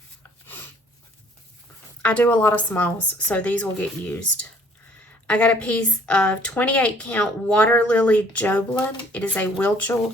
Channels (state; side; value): normal; both; correlation 0.58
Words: I do a lot of smalls, so these will get used. I got a piece of 28 count Water Lily Joblin. It is a